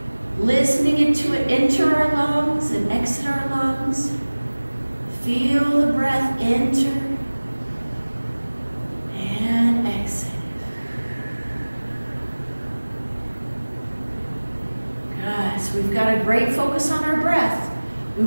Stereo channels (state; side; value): inverted; both; correlation -1.00